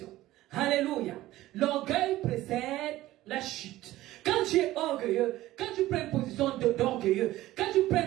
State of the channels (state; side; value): quieter; left; 16.0 dB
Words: Alléluia. L'orgueil précède la chute. Quand tu es orgueilleux, quand tu prends une position d'orgueilleux, quand tu prends